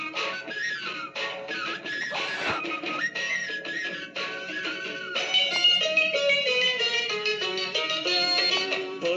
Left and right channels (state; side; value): identical; both; correlation 1.00